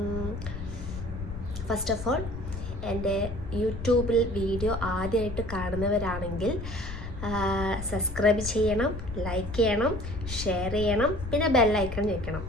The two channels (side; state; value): left; noise; rumble, 8 dB below the sound